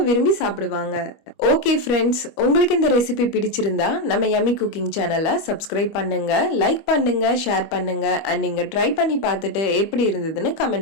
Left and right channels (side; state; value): right; late; 25 ms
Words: விரும்பி சாப்பிடுவாங்க. ஓகே ஃப்ரெண்ட்ஸ், உங்களுக்கு இந்த ரெசிபி பிடிச்சிருந்தா நம்ம யம்மி குக்கிங் சேனலை சப்ஸ்கிரைப் பண்ணுங்க, லைக் பண்ணுங்க, ஷேர் பண்ணுங்க. அண்ட் நீங்க ட்ரை பண்ணி பார்த்துட்டு எப்படி இருந்ததுன்னு